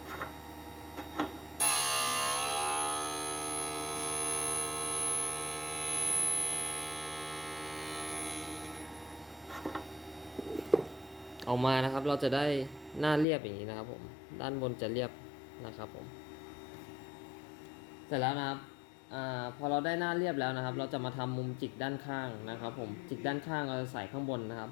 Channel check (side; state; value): right; drops out; at 13.2 s